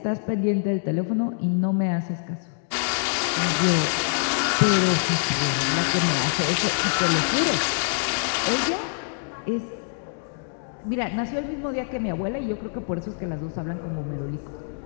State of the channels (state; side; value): silent; right; digital silence